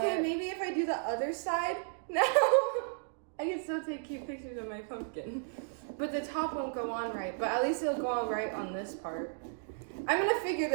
maybe if I do the other side, no. I can still take cute pictures of my pumpkin. But the top won't go on right, but at least it'll go on right on this part. I'm gonna figure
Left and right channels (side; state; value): left; silent; digital silence